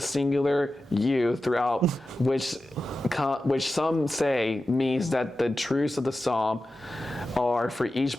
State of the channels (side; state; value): both; normal; correlation 0.93